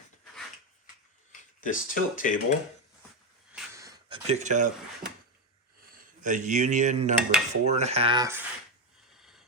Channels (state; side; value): normal; both; correlation 0.09